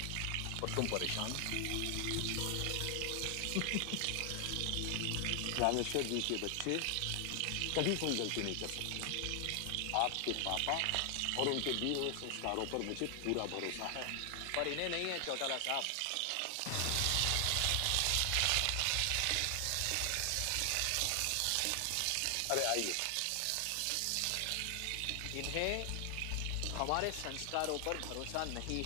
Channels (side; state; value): both; different; correlation 0.00